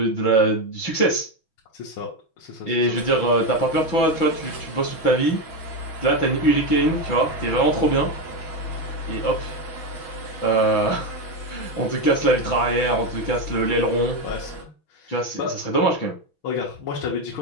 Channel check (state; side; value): late; right; 6.1 ms